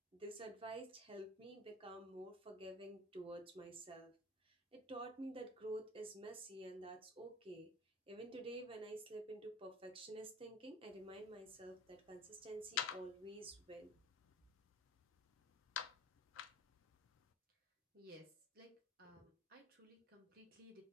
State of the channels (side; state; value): both; normal; correlation 0.42